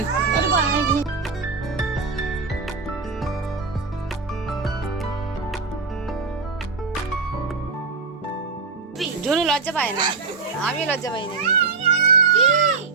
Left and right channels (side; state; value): left; quieter; 4.5 dB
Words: জুনু লজ্জা পায় না, আমি লজ্জা পাই না।